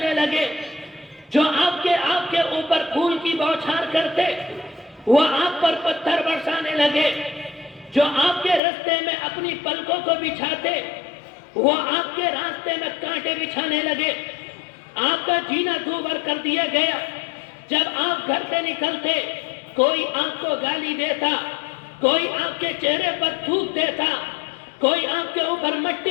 لگے، جو آپ کے اوپر پھول کی بوچھار کرتے وہ آپ پر پتھر برسانے لگے، جو آپ کے راستے میں اپنی پلکوں کو بچھاتے وہ آپ کے راستے میں کانٹے بچھانے لگے، آپ کا جینا دوبر کر دیا گیا۔ جب آپ گھر سے نکلتے کوئی آپ کو گالی دیتا، کوئی آپ کے چہرے پر تھوک دیتا، کوئی آپ کے اوپر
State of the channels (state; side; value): drops out; right; at 8.6 s